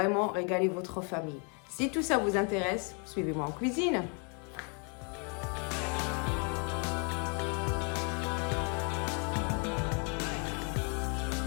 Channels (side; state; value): right; quieter; 37.4 dB